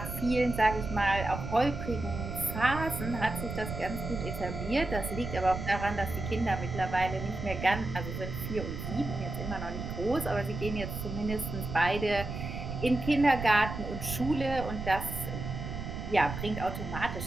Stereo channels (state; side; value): noise; right; rumble, 6 dB below the sound